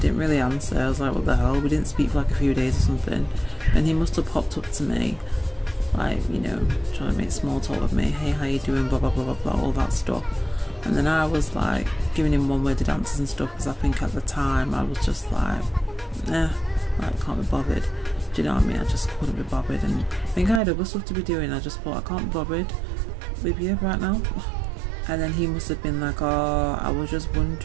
didn't really answer. I was like, what the hell? We didn't speak for like a few days or something, and he must have popped up to me, like, you know, trying to make small talk with me. Hey, how you doing? Blah blah blah blah blah, all that stuff. And then I was like giving him one-worded answers and stuff, because I think at the time I was just like, like, can't be bothered. Do you know what I mean? I just couldn't be bothered, and I think I had other stuff to be doing. I just thought, I can't be bothered with you right now. And then he must have been like, oh, I was just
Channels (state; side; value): drops out; left; at 20.6 s